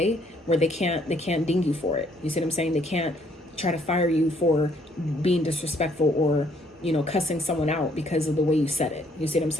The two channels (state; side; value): normal; both; correlation 0.66